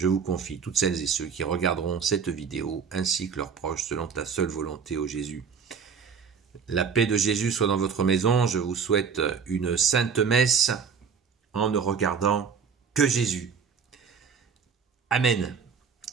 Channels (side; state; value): left; quieter; 6.2 dB